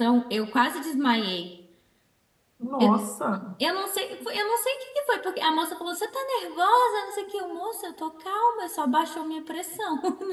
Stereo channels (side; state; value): both; identical; correlation 1.00